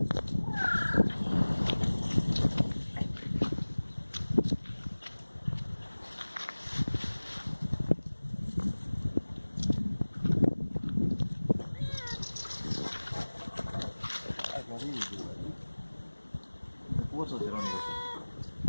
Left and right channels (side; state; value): both; inverted; correlation -1.00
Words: Puso si ronii così.